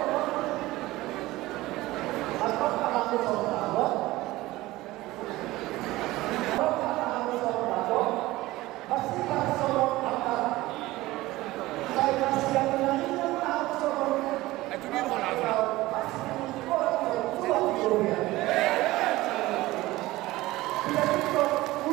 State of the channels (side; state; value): left; quieter; 18.3 dB